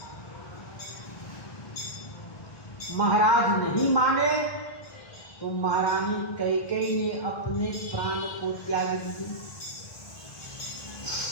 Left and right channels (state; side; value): late; right; 1.6 ms